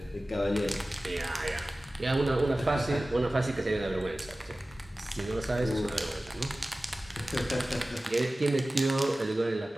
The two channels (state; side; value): normal; both; correlation 0.97